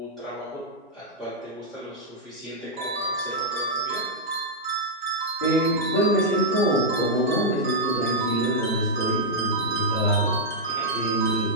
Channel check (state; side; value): normal; both; correlation -0.05